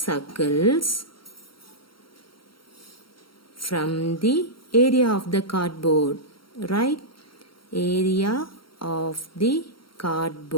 from the area of the cardboard, right? Area of the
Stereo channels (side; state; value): right; late; 0.73 ms